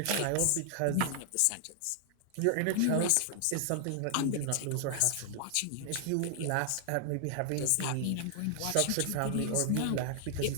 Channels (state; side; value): different; both; correlation 0.00